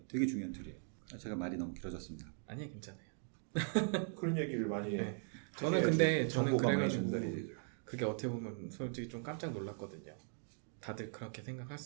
되게 중요한 툴이에요. 제가 말이 너무 길어졌습니다. 아니요, 괜찮아요. 그런 얘기를 많이 네. 저는 근데 저는 정보가 많이 그래가지고 전달이 되죠. 그게 어떻게 보면 솔직히 좀 깜짝 놀랐거든요. 다들 그렇게 생각할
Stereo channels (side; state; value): left; silent; 51 dB below the other